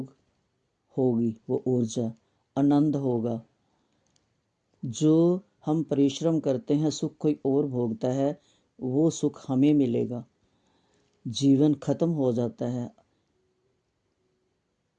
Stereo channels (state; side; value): identical; both; correlation 1.00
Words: होगी वो ऊर्जा, आनंद होगा। जो हम परिश्रम करते हैं सुख कोई और भोगता है, वो सुख हमें मिलेगा। जीवन खत्म हो जाता है